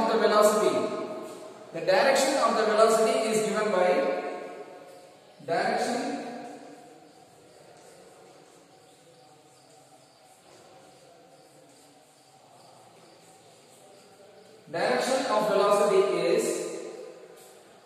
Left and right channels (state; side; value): identical; both; correlation 1.00